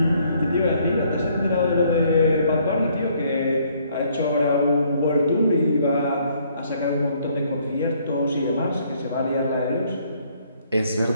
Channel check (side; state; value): both; inverted; correlation -0.66